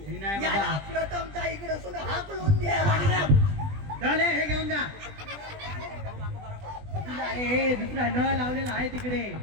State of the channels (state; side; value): late; left; 20 ms